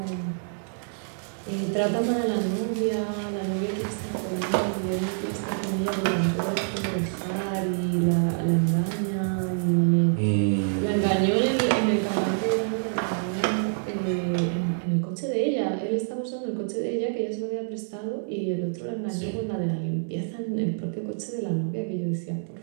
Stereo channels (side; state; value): left; silent; digital silence